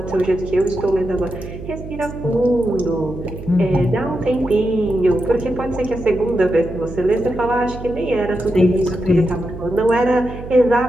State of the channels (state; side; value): noise; right; hum, 11 dB below the sound